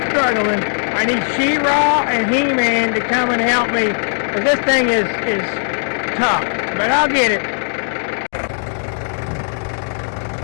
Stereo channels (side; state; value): right; silent; digital silence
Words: Struggling. I need She-Ra and He-Man to come and help me, because this thing is tough, but I'll get it.